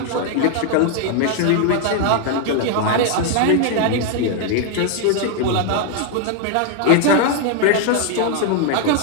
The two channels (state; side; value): different; both; correlation 0.00